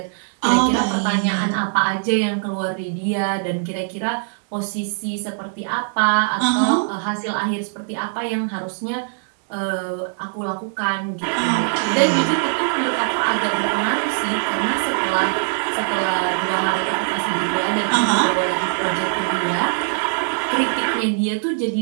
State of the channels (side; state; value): left; silent; digital silence